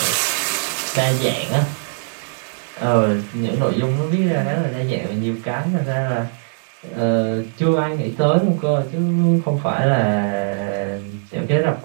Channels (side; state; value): left; silent; digital silence